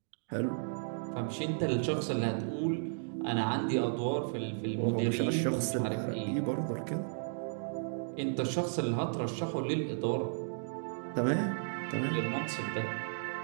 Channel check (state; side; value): silent; left; digital silence